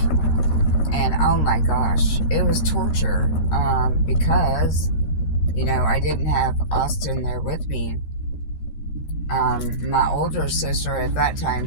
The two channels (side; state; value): right; late; 13 ms